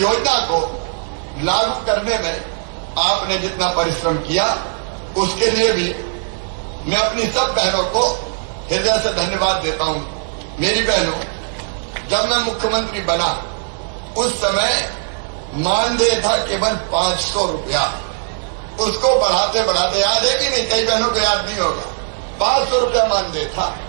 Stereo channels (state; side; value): silent; left; 67 dB below the other